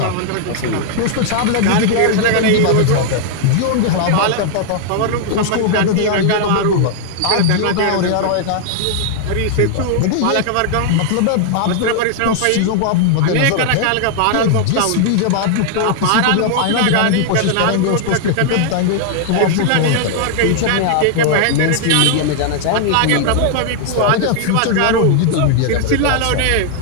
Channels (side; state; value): both; different; correlation 0.00